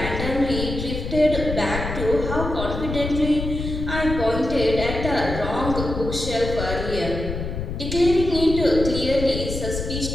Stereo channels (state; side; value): noise; left; rumble, 5 dB below the sound